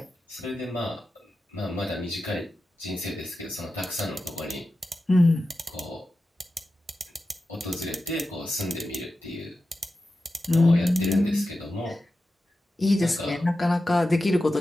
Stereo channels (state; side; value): normal; both; correlation 0.92